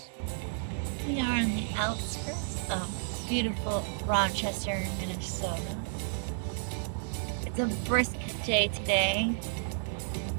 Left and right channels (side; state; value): left; silent; digital silence